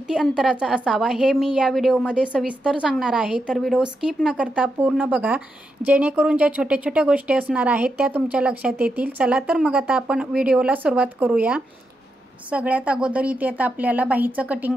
अंतराचा असावा हे मी या व्हिडिओमध्ये सविस्तर सांगणार आहे। तर व्हिडिओ स्किप न करता पूर्ण बघा, जेणेकरून ज्या छोट्या छोट्या गोष्टी असणार आहेत त्या तुमच्या लक्षात येतील। चला तर मग आता आपण व्हिडिओला सुरुवात करूया। सगळ्यात अगोदर इथे आता आपल्याला बाहीचं कटिंग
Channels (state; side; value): normal; both; correlation 0.85